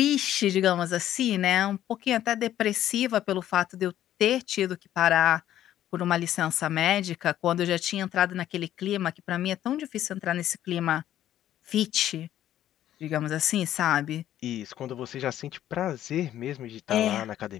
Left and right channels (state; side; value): quieter; right; 12.0 dB